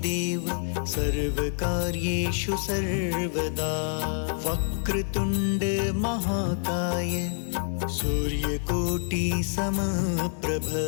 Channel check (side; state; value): right; silent; 60 dB below the other